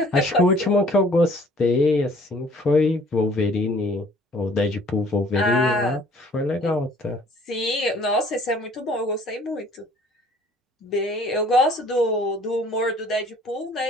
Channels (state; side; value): normal; both; correlation 0.55